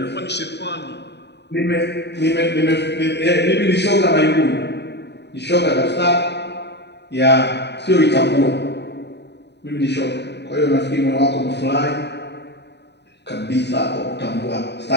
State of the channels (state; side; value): late; right; 0.50 ms